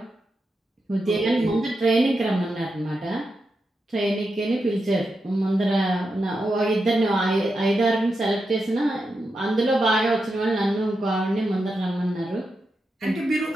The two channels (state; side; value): normal; both; correlation 0.87